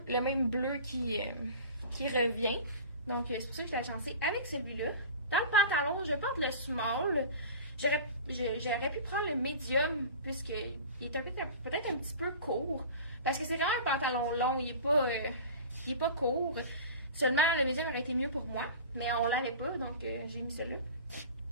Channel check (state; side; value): inverted; both; correlation -0.36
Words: le même bleu qui revient. Donc, c'est pour ça que je l'ai agencé avec celui-là. Dans le pantalon, je porte le small. J'aurais pu prendre le medium, puisqu'il est peut-être un petit peu court. Parce que c'est vraiment un pantalon long, il est pas court. Seulement, le medium aurait été mieux pour moi. Mais on l'avait pas, donc j'ai mis celui-là.